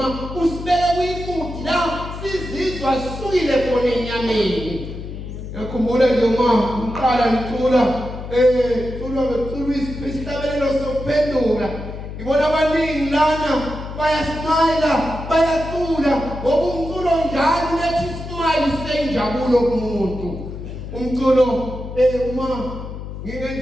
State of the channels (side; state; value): left; noise; hum, 9 dB below the sound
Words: usibeka kuyimudi la sizizwa sisukile khona enyameni. Yakhumbula nje uma uqala ngicula cula isihlabelelo sokuphendula ngibona abaningi lana bayasmayila bayacula ngoba umculo njalo ulethi ismile senjabulo kumuntu. Umculo uma